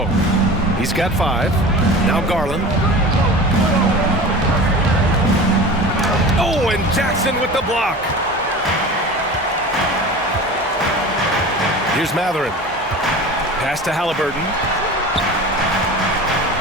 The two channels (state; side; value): normal; both; correlation 0.35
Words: He's got 5. Now Garland. Oh, and Jackson with the block. Here's Matherin. Pass to Halliburton.